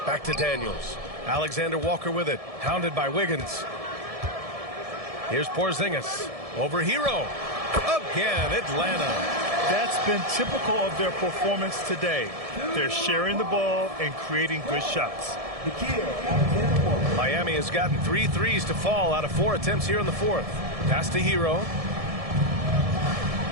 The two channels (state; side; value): late; left; 1.7 ms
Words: Back to Daniels. Alexander Walker with it. Hounded by Wiggins. Here's Porzingis. Over Hero. Again, Atlanta. That's been typical of their performance today. They're sharing the ball and creating good shots. Miami has gotten 3 threes to fall out of 4 attempts here in the fourth. Pass to Hero.